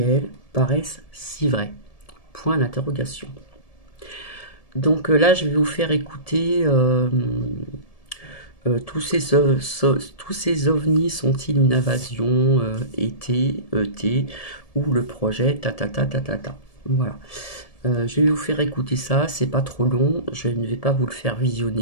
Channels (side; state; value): right; late; 1.7 ms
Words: paraisse si vrai? Point d'interrogation. Donc là, je vais vous faire écouter tous ces ovnis sont-ils une invasion ET, ou le projet ta. Voilà. Je vais vous faire écouter ça, c'est pas trop long, je ne vais pas vous le faire